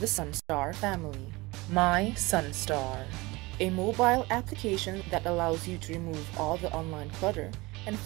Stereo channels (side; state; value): left; quieter; 22.7 dB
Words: Sunstar family, My Sunstar, a mobile application that allows you to remove all the online clutter and